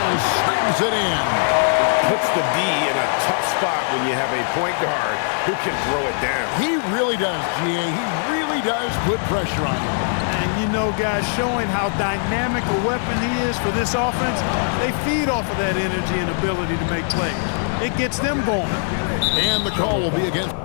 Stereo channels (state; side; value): silent; right; 55 dB below the other